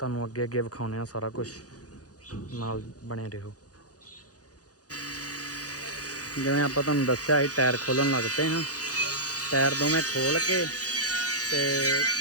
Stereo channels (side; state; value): right; late; 0.67 ms